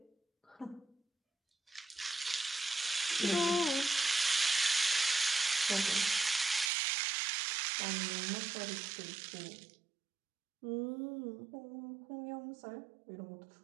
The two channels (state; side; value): drops out; left; at 6.7 s